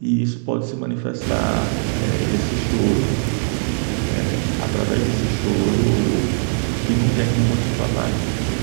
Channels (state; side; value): silent; left; digital silence